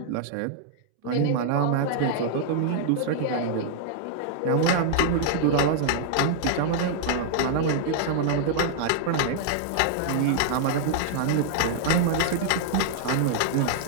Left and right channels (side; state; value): both; different; correlation -0.01